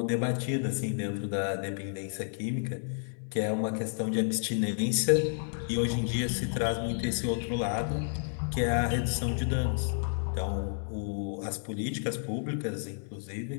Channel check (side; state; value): right; silent; 57 dB below the other